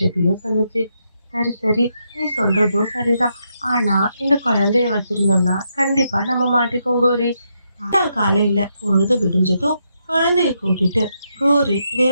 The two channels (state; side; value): inverted; both; correlation -0.80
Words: சொல்லுச்சு. சரி சரி, நீ சொல்றதும் சரிதான். ஆனா இந்த குழந்தைய வச்சிருந்தோம்னா கண்டிப்பா நம்ம மாட்டிப்போம் கோரி. காலையில பொழுது விடிஞ்சதும் குழந்தைய கூட்டிட்டு கோரி